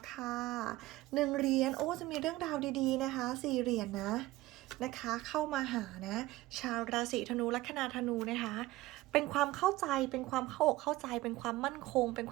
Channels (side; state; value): left; quieter; 18.0 dB